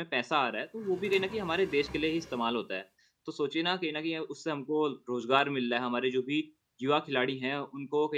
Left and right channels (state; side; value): identical; both; correlation 1.00